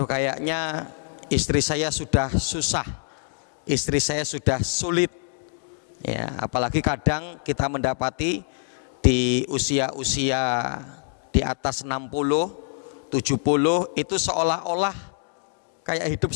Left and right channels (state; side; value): silent; right; 61 dB below the other